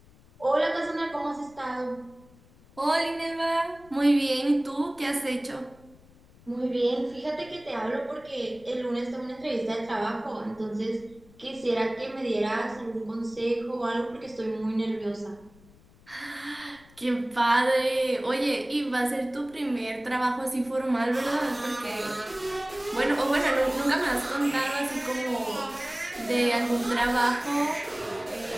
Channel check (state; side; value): noise; left; rumble, 26 dB below the sound